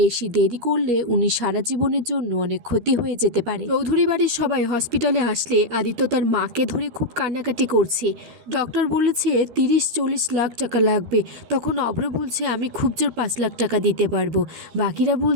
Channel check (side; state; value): left; late; 13 ms